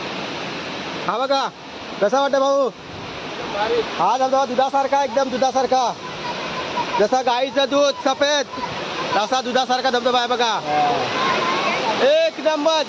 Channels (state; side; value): identical; both; correlation 1.00